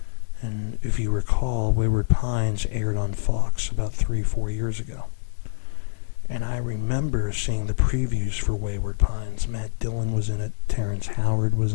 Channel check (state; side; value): silent; right; digital silence